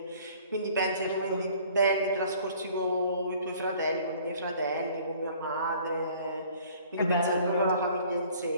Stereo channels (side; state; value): both; inverted; correlation -0.53